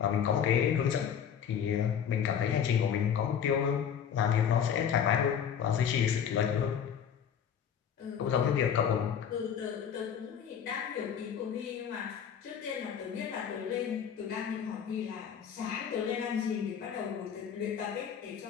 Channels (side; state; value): right; quieter; 8.2 dB